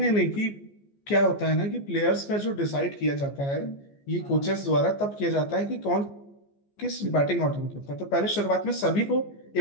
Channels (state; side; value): late; right; 14 ms